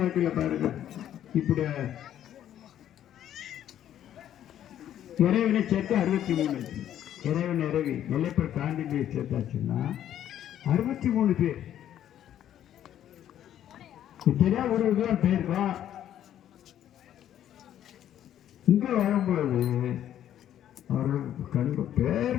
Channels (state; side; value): quieter; right; 11.0 dB